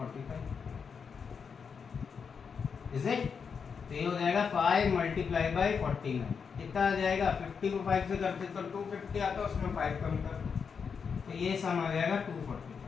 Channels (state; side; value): quieter; right; 6.1 dB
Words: Is it? तो ये हो जाएगा 5 मल्टीप्लाई बाई 49। कितना आ जाएगा? 50 को 5 से करते तो 250 आता, उसमें 5 कम कर, तो ये सम आ जाएगा